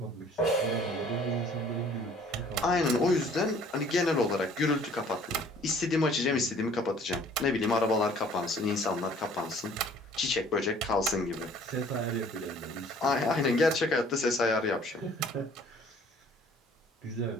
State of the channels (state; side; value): normal; both; correlation 0.54